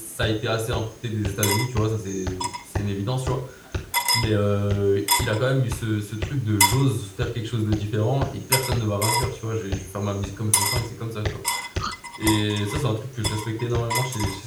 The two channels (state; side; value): identical; both; correlation 1.00